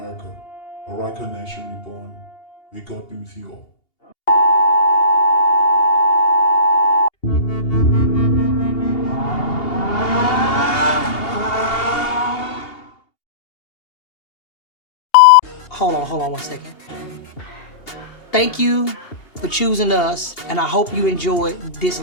a Riker nation reborn. May God be with you all. Hold on 1 second. Thank you for choosing us, and I hope you enjoyed this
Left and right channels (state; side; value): late; right; 2.8 ms